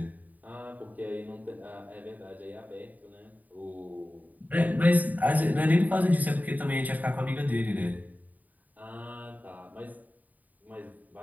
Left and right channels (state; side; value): late; left; 0.078 ms